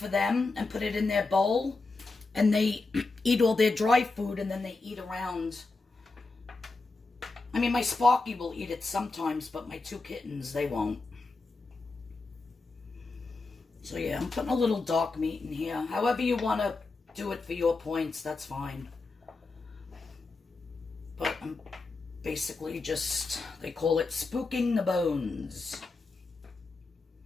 them and put it in their bowl. And they eat all their dry food, and then they eat around I mean, my Sparky will eat it sometimes, but my 2 kittens, they won't. So yeah, I'm putting a little dark meat in here. However you want to do it for your points, that's fine. But I'm basically just, they call it spooking the bones.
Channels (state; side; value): quieter; right; 3.7 dB